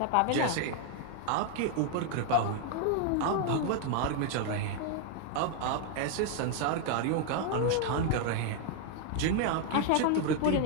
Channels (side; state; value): both; different; correlation 0.00